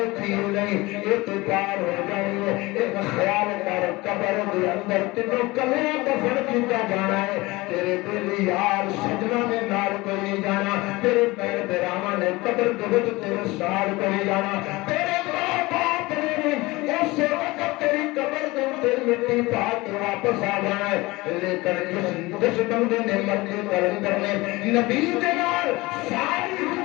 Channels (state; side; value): quieter; right; 21.7 dB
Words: تھی نہیں اعتبار ہو جائے ایک خیال کر قبر دے اندر تینوں کلے دفن کیتا جانا ہے تیرے دل یار سجنا نے نال کوئی جانا تیرے پیر براواں نے قبر دے وچ تیرے سال کوئی جانا تیرے ماں باپ نے اس وقت تیری قبر دے تے مٹی پا کے واپس آ جانا ہے لیکن جس بندے نے مرنے کلندر نے نبی دے نال ساری